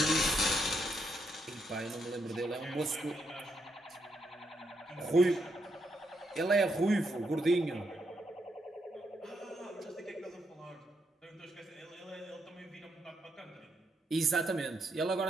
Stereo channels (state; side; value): normal; both; correlation 0.79